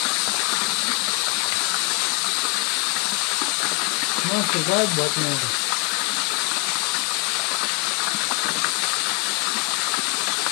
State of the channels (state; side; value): quieter; right; 29.6 dB